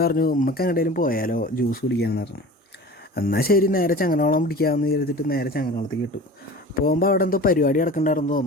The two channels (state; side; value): normal; both; correlation 0.38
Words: പറഞ്ഞു ഉമ്മക്ക് എങ്ങോട്ടേലും പോയാലോ ജ്യൂസ് കുടിക്കാമെന്ന് പറഞ്ഞു. എന്നാൽ ശരി നേരെ ചങ്ങനോളം പിടിക്കാമെന്ന് വിചാരിച്ചിട്ട് നേരെ ചങ്ങനോളത്തേക്ക് ഇട്ടു. പോകുമ്പോൾ അവിടെ എന്തോ പരിപാടി നടക്കണ്ടായിരുന്നു